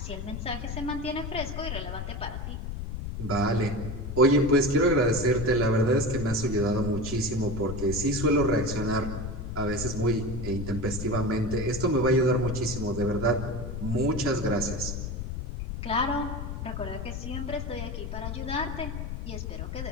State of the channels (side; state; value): left; noise; rumble, 5 dB below the sound